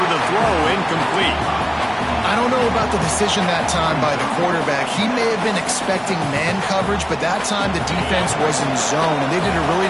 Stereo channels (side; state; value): both; identical; correlation 1.00